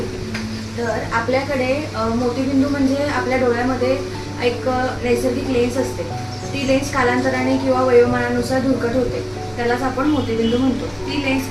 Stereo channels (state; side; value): identical; both; correlation 1.00